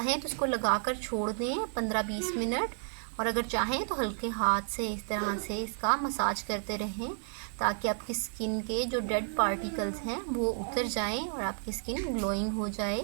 तो इसको लगाकर छोड़ दें 15-20 मिनट और अगर चाहें तो हल्के हाथ से इस तरह से इसका मसाज करते रहें ताकि आपकी स्किन के जो डेड पार्टिकल्स हैं वो उतर जाएं और आपकी स्किन ग्लोइंग हो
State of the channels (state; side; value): silent; left; digital silence